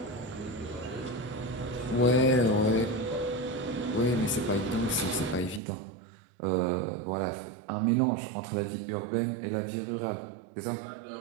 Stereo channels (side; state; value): left; drops out; at 5.6 s